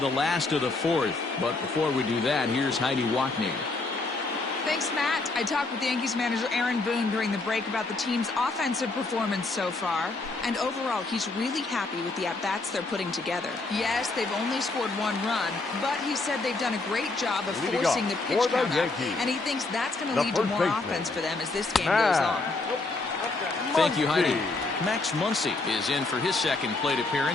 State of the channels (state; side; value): quieter; right; 3.4 dB